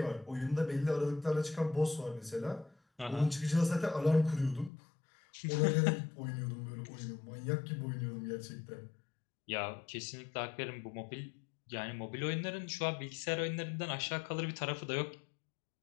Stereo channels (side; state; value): right; drops out; at 4.7 s